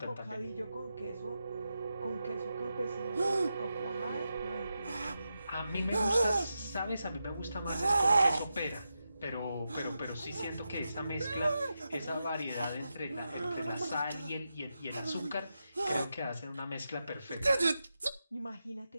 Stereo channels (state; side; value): inverted; both; correlation -0.88